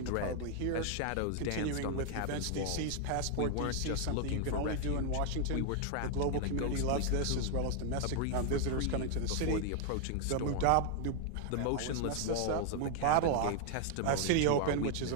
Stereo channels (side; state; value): both; different; correlation 0.00